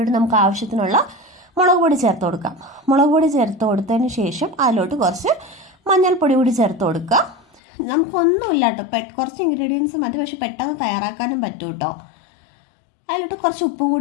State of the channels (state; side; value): drops out; right; at 7.6 s